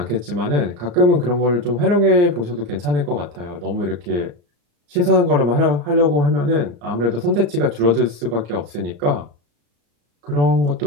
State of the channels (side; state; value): left; late; 34 ms